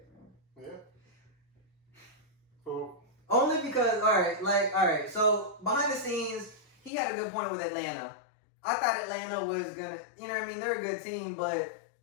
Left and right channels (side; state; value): right; drops out; at 6.9 s